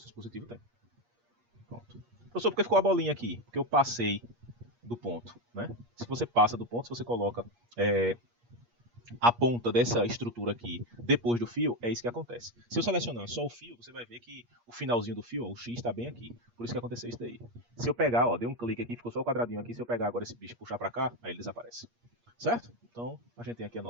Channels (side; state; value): left; late; 8.5 ms